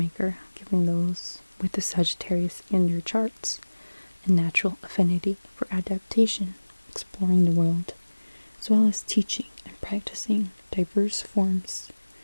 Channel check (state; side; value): inverted; both; correlation -1.00